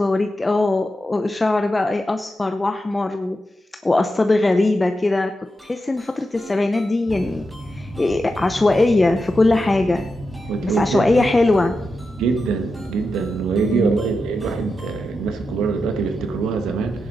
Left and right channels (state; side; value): normal; both; correlation 0.88